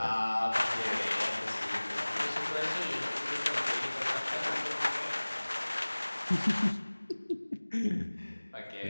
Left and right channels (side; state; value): both; inverted; correlation -1.00